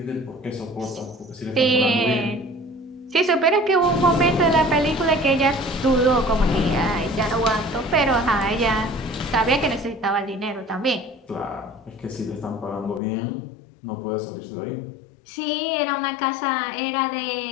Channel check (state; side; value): drops out; right; at 13.0 s